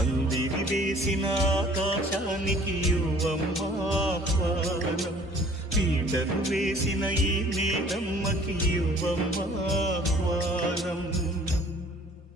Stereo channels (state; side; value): normal; both; correlation 0.53